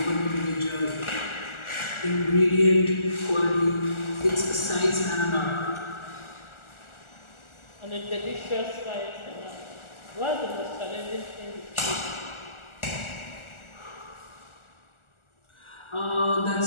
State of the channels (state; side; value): late; right; 1.4 ms